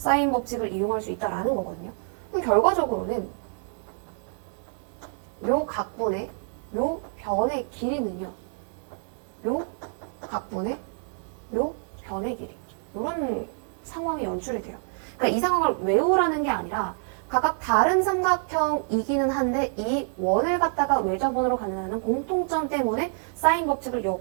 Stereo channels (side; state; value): left; silent; 56 dB below the other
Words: 법칙을 이용할 수 있다는 거거든요. 그럼 결과적으로는 요 각분의 요 변의 길이는요. 요 각분의 요 변의 길이. 이런 상황이 연출이 돼요. 그러니까 이 상황을 외우라는 게 아니라 각각 다른 삼각형이기는 한데 이 원을 갖다가 외접원으로 갖는다는 공통점 때문에 사인 법칙을